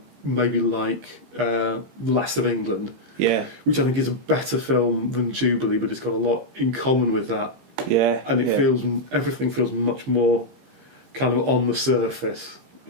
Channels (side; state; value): left; late; 15 ms